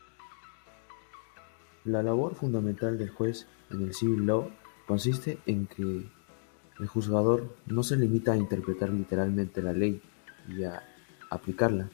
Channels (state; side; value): silent; right; digital silence